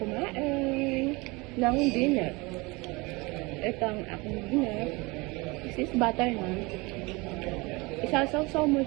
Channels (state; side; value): quieter; left; 25.1 dB